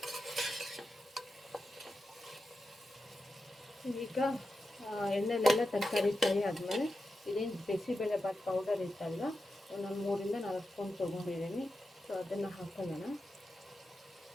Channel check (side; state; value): both; normal; correlation 0.90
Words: ಈಗ ಎಣ್ಣೆಲೆಲ್ಲ ತರಕಾರಿ ಫ್ರೈ ಆದಮೇಲೆ ಇದೇನು ಬಿಸಿಬೇಳೆಬಾತ್ ಪೌಡರ್ ಇತ್ತಲ್ಲ ನಾನು 3-4 ಸ್ಪೂನ್ ತೊಗೊಂಡಿದ್ದೀನಿ. ಸೊ ಅದನ್ನು ಹಾಕೊಳ್ಳೋಣ.